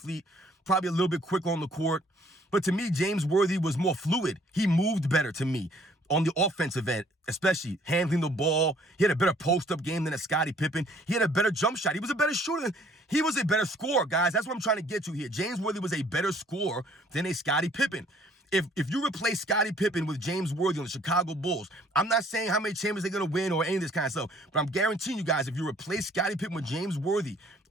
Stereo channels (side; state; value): both; normal; correlation 0.60